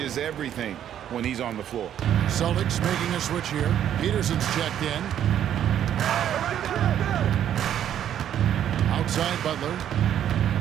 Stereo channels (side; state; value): left; quieter; 10.3 dB